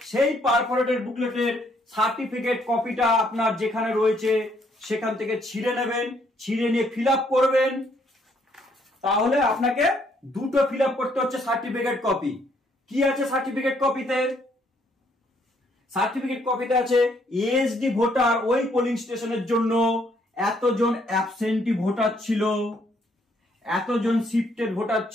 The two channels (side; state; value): both; normal; correlation 0.69